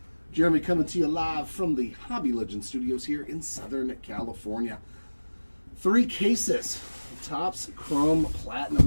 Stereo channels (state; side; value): inverted; both; correlation -1.00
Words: Jeremy coming to you live from the Hobby Legend Studios here in Southern California. 3 cases, Topps Chrome